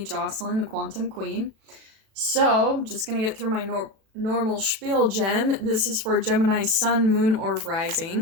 Jocelyn, the Quantum Queen. So, just gonna get through my normal spiel, Gem. This is for Gemini Sun, Moon, or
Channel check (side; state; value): left; late; 37 ms